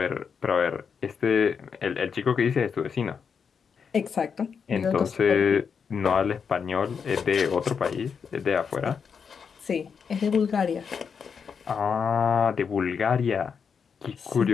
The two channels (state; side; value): quieter; right; 6.3 dB